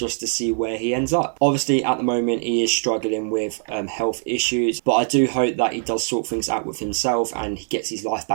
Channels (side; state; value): left; silent; digital silence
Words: to see where he ends up. Obviously, at the moment, he is struggling with health issues, but I do hope that he does sort things out with himself and he gets his life